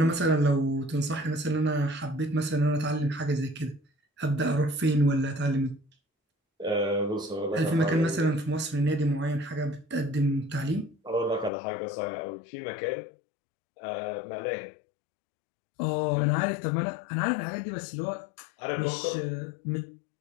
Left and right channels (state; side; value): drops out; right; at 11.5 s